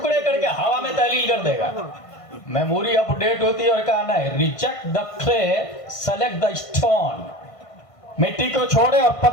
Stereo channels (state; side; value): late; right; 1.5 ms